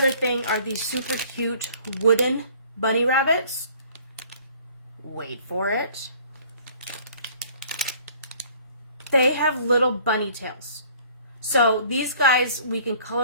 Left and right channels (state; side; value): inverted; both; correlation -0.54